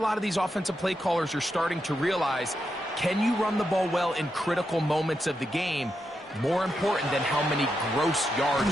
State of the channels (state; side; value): normal; both; correlation 0.85